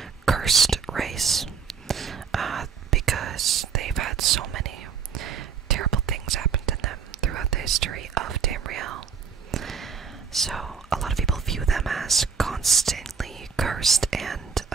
cursed race because they've had so many terrible things happen to them throughout the history of Tamriel. So a lot of people view them as constantly cursed, and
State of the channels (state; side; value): quieter; left; 6.2 dB